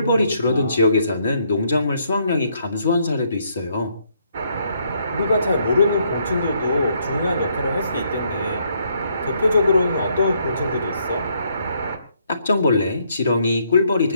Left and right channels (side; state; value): both; inverted; correlation -0.71